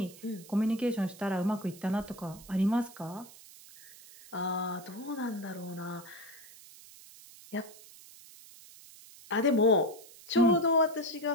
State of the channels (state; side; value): noise; right; hiss, 20 dB below the sound